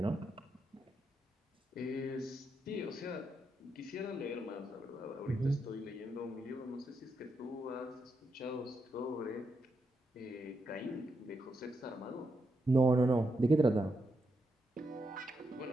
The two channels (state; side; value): normal; both; correlation 0.83